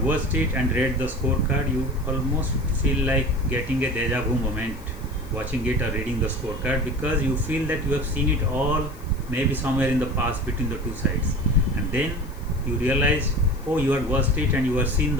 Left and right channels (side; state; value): left; noise; hiss, 24 dB below the sound